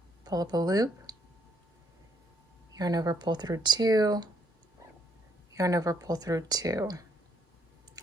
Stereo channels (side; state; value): both; normal; correlation 0.71